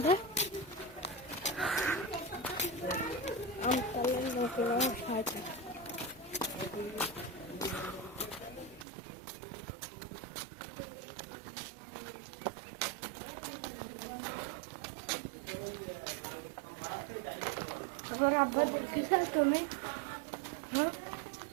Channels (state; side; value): drops out; left; at 8.8 s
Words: আমতলার লোকরা সাথে আমার আব্বা দেখেছ তুমি হ্যাঁ